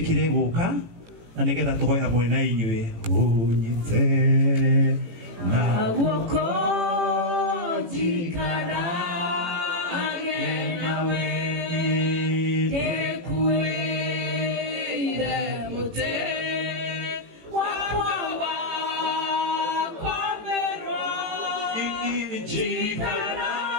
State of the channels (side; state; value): left; late; 18 ms